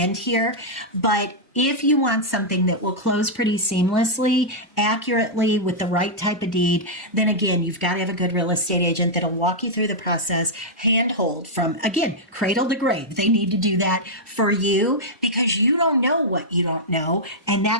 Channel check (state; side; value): normal; both; correlation -0.07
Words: end here, but if you want something that will close pretty seamlessly, accurately, with the right type of deed, then again, you've got to have a good real estate agent that'll walk you through the process, handhold from, again, cradle to grave. They need to do that for you, because you don't know what you don't know, and